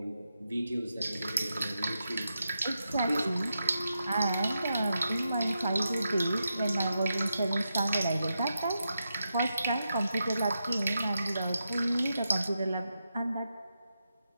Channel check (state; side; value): inverted; both; correlation -0.87